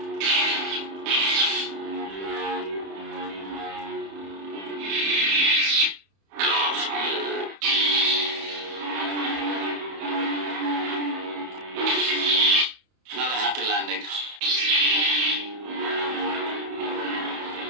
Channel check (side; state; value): left; late; 31 ms